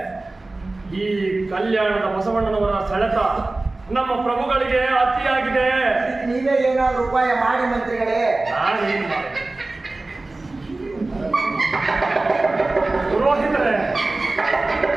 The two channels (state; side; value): quieter; left; 3.1 dB